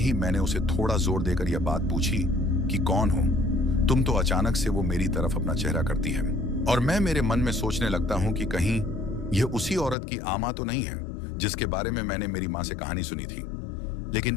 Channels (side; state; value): right; drops out; at 10.0 s